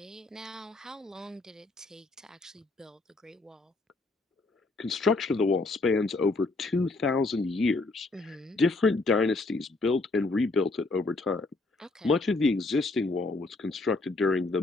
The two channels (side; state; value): right; quieter; 3.3 dB